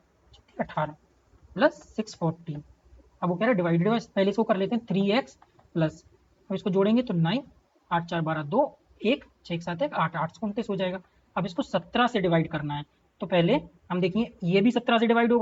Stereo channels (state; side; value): identical; both; correlation 1.00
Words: 18 प्लस 640। अब वो कह रहा है डिवाइडेड बाय, पहले इसको कर लेते हैं 3x प्लस, अब इसको जोड़ेंगे तो 9 8 4 12 2 1 6 7 1 8 8 29 हो जाएगा। अब इसको 17 से डिवाइड करना है, तो पहले हम देखिए ये भी 17 से डिवाइड